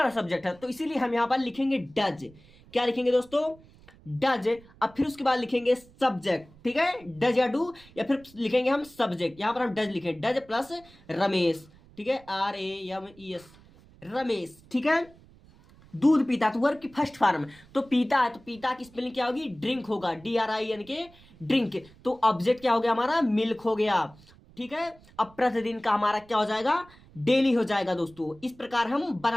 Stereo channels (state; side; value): noise; right; rumble, 25 dB below the sound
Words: सब्जेक्ट है, तो इसीलिए हम यहाँ पर लिखेंगे डज। क्या लिखेंगे दोस्तों, डज। अब फिर उसके बाद लिखेंगे सब्जेक्ट, ठीक है, डज या डू, या फिर लिखेंगे हम सब्जेक्ट। यहाँ पर हम डज लिखेंगे, डज प्लस रमेश, ठीक है, RAMES रमेश, ठीक है। दूध पीता, तो वर्ब की फर्स्ट फॉर्म, तो पीता है, तो पीता की स्पेलिंग क्या होगी, ड्रिंक होगा, DRINK ड्रिंक। तो ऑब्जेक्ट क्या हो गया हमारा, मिल्क हो गया, ठीक है। अब प्रतिदिन का हमारा क्या हो जाएगा, डेली हो जाएगा दोस्तों। इस प्रकार हम